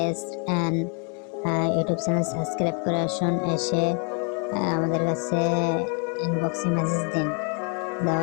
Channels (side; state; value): right; quieter; 38.6 dB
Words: and YouTube channel subscribe করে আসুন। এসে আমাদের কাছে ইনবক্সে মেসেজ দিন।